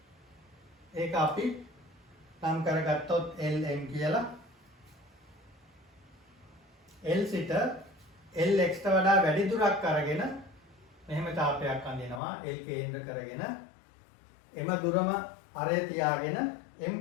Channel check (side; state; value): right; drops out; at 12.2 s